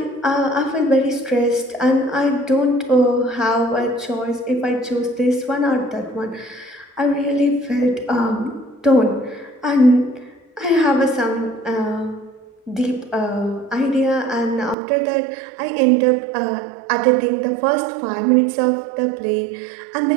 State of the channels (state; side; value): drops out; left; at 14.8 s